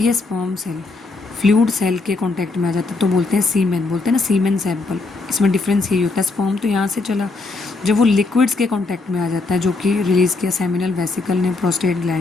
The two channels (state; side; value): quieter; right; 3.6 dB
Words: स्पर्म सेल फ्लूइड सेल के कांटेक्ट में आ जाता है तो बोलते हैं सीमेन, बोलते हैं ना सीमेन सैंपल। इसमें डिफरेंस यही होता है, स्पर्म तो यहाँ से चला, जब वो लिक्विड्स के कांटेक्ट में आ जाता है जो कि रिलीज़ किया सेमिनल वेसिकल ने, प्रोस्टेट